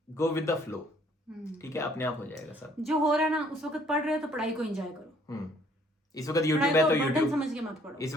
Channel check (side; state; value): both; normal; correlation 0.62